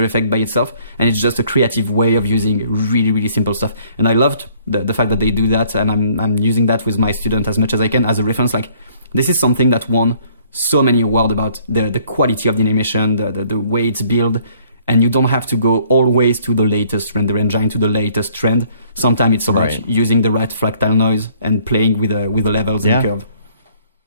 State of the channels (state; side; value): inverted; both; correlation -0.60